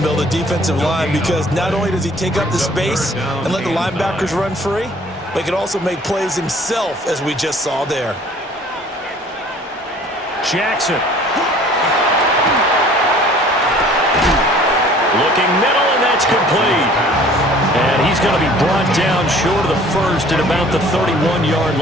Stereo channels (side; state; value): both; normal; correlation 0.52